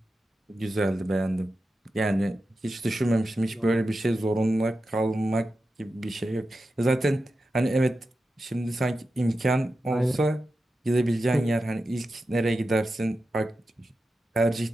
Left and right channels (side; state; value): both; normal; correlation 0.91